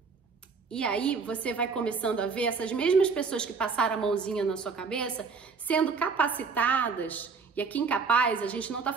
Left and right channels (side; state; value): left; quieter; 5.1 dB